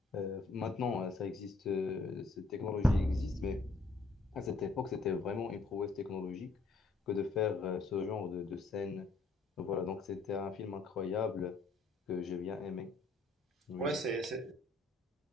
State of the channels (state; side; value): quieter; right; 3.5 dB